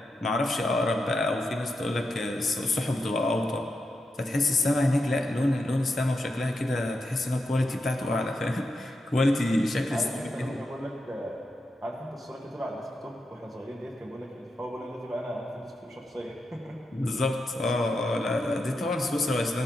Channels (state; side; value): normal; both; correlation 0.86